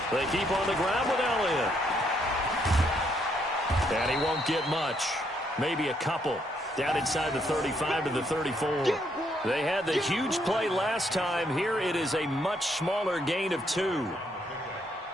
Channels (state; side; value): normal; both; correlation 0.73